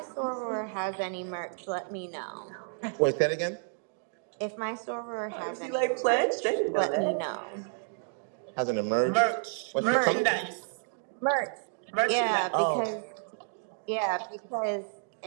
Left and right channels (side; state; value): left; silent; digital silence